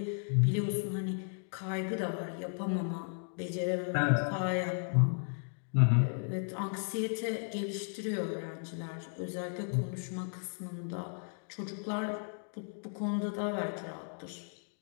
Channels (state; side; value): silent; right; 55 dB below the other